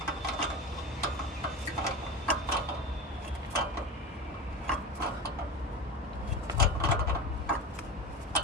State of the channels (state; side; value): normal; both; correlation 0.27